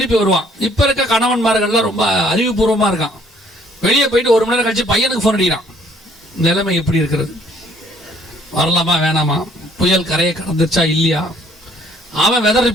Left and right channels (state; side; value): normal; both; correlation 0.61